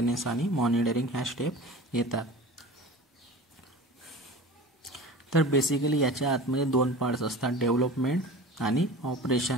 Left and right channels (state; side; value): normal; both; correlation 0.36